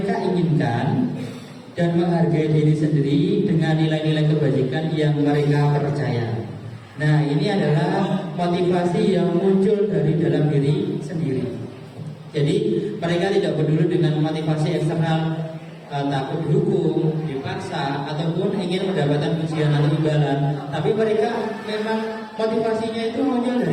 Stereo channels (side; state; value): both; identical; correlation 1.00